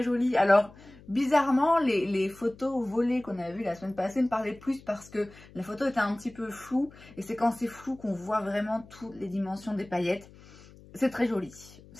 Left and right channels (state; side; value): noise; left; hum, 22 dB below the sound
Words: joli. Alors, bizarrement, les photos volées qu'on a vues la semaine passée me parlaient plus parce que la photo était un petit peu floue. Et c'est quand c'est flou qu'on voit vraiment toutes les dimensions des paillettes. C'est très joli.